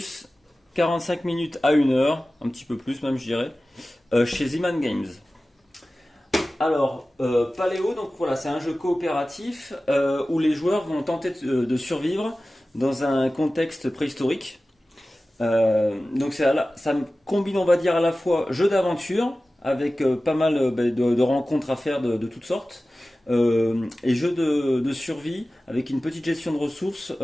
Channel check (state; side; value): normal; both; correlation 0.96